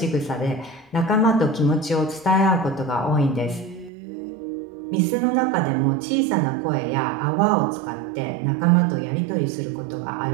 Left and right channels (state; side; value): drops out; left; at 3.9 s